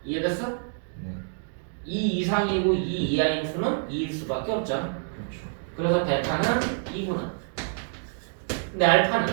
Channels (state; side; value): silent; left; digital silence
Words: 이해됐어? 네. 2 이상이고 2 이하인 수는 2일 수밖에 없잖아. 그렇죠. 그래서 베타는 2구나. 근데 알파는